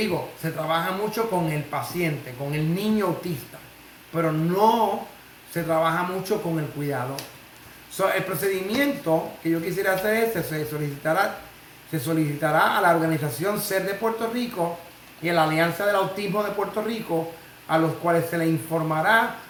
se trabaja mucho con el paciente, con el niño autista, pero no se trabaja mucho con el cuidador. So, el procedimiento que yo quisiera hacer es, se solicitará a la organización SER de Puerto Rico y a la Alianza del Autismo de Puerto Rico, a los cuales se le informará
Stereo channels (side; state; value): both; identical; correlation 1.00